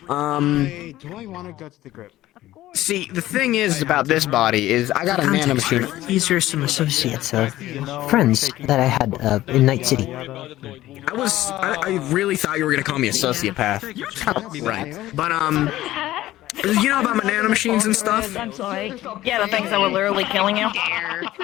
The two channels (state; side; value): quieter; right; 15.3 dB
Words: Do I want to go to the grip? See, the thing is about this body is I got a nanomachine. These are some associates, friends that I had in Night City. I really thought you were gonna call me a sociopath. Right. But you know about my nanomachines and stuff? I'm sorry. Yeah, the things that were literally killing you.